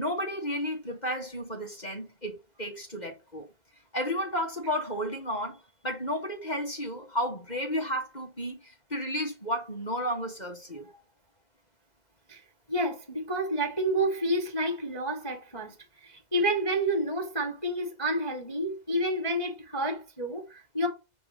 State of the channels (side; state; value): right; late; 2.0 ms